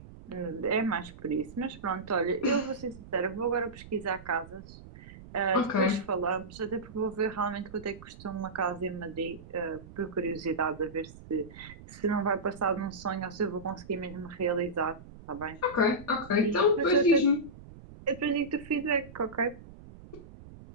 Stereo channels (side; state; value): right; noise; rumble, 17 dB below the sound